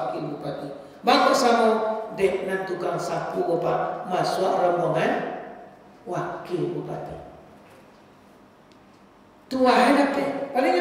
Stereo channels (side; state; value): both; identical; correlation 1.00